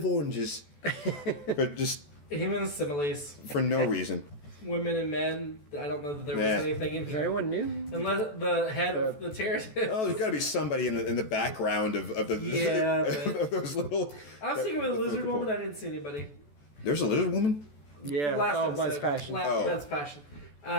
oranges, but just Human similes. for no reason. Women and men. I don't know that there was anything in Is there here. anyone new? Unless the head of the Terratin. Oh, there's got to be somebody in the background of the of those little. I was thinking with the lizard woman. I didn't see anybody. There's a lizard woman. Yeah. Last Mud's episode. Passion. Mud's Passion.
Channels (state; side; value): late; right; 14 ms